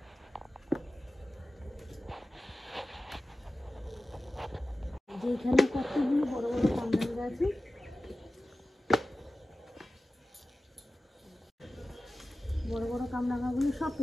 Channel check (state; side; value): normal; both; correlation 0.94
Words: যেখানে কতগুলো বড় বড় কামরাঙ্গা আছে। বড় বড় কামরাঙ্গাগুলো সব